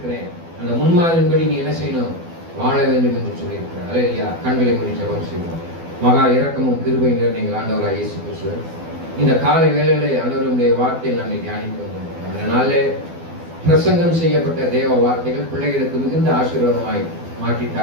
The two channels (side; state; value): left; late; 12 ms